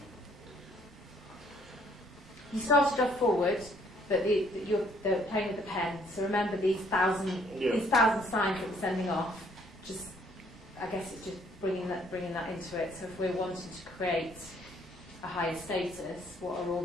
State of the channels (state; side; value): normal; both; correlation 0.64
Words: You started off forward, but they're playing with the pen. So remember these thousand signs that we're sending off. Just, I guess it's just bringing that into it. So if we're wanting to create a higher status, what are all